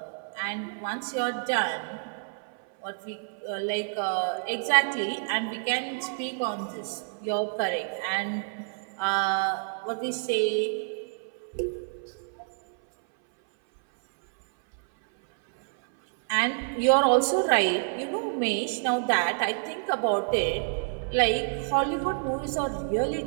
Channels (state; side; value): silent; left; 59 dB below the other